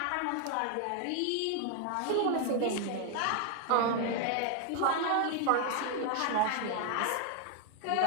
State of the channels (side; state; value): both; different; correlation 0.00